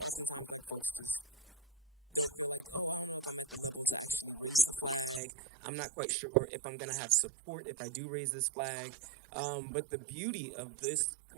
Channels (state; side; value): drops out; left; at 5.2 s